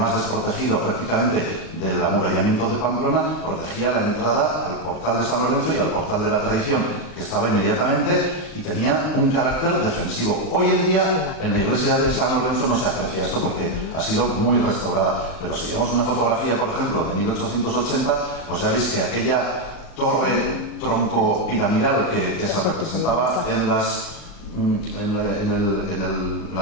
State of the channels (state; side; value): late; right; 39 ms